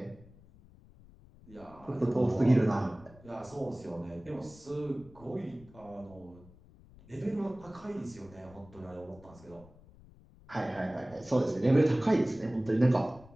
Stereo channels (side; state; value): left; noise; rumble, 23 dB below the sound